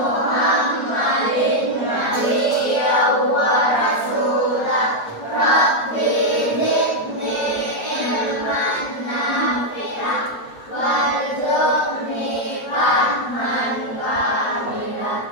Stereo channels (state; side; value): late; right; 8.5 ms